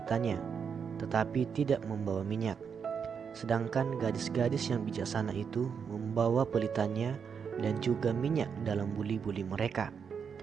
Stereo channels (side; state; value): left; quieter; 6.6 dB